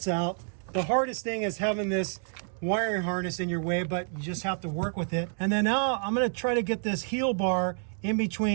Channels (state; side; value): silent; left; 59 dB below the other